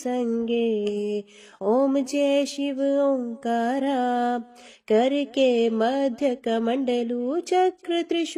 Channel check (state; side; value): identical; both; correlation 1.00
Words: ओम जय शिव ओंकारा। करके मध्य कमंडलू चक्र